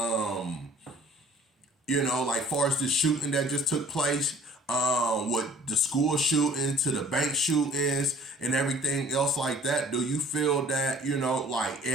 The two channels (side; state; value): both; normal; correlation 0.52